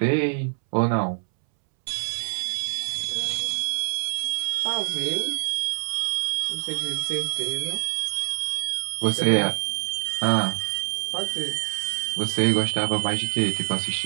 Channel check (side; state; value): left; silent; 61 dB below the other